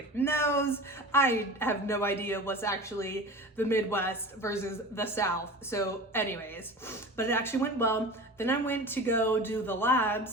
knows? I have no idea what's actually the Midwest versus the South. So anyways, but it actually went well. Then I went to go do the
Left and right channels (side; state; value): both; normal; correlation 0.34